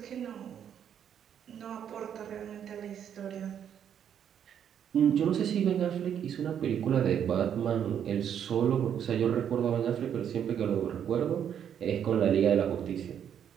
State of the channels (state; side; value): quieter; left; 8.9 dB